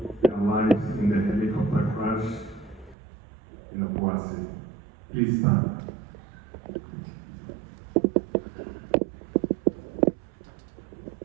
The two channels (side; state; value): left; drops out; at 3.0 s